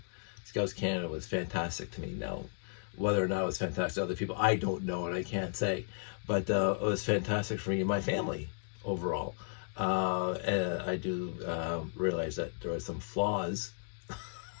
Scouts Canada was fantastic to me. Now, whether or not it was fantastic to other people, I don't know, and I can't say. But it was fantastic for me and my family overall. And I do realize that there are some flaws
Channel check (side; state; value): right; silent; digital silence